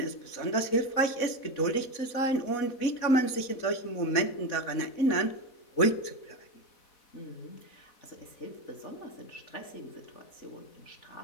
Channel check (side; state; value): right; late; 4.1 ms